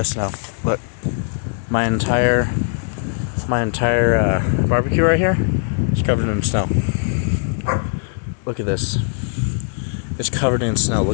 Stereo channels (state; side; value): silent; right; 64 dB below the other